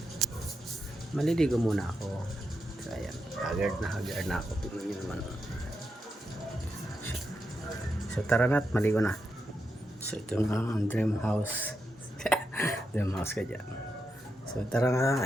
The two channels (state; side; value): normal; both; correlation 0.85